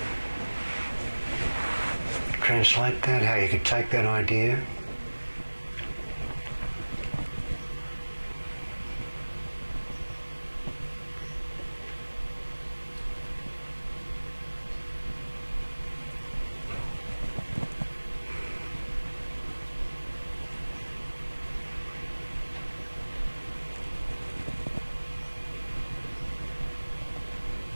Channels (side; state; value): both; inverted; correlation -1.00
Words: translate that, how you could take that idea